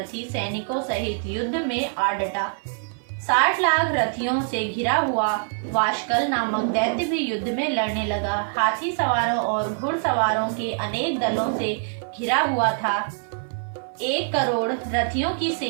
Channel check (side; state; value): left; silent; 56 dB below the other